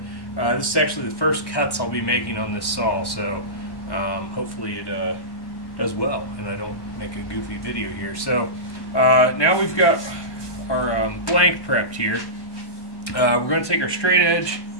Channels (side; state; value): right; late; 1.1 ms